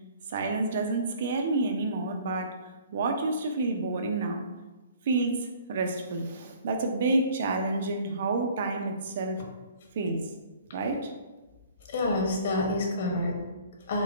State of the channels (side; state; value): both; inverted; correlation -0.53